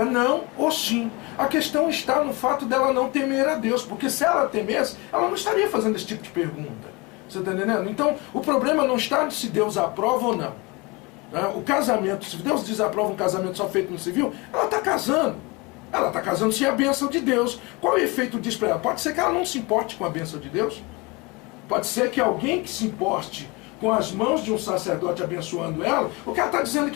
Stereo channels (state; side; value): quieter; right; 26.1 dB